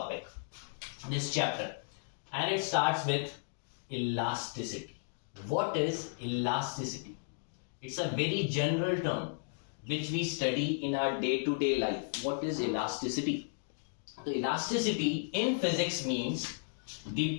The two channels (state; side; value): silent; right; digital silence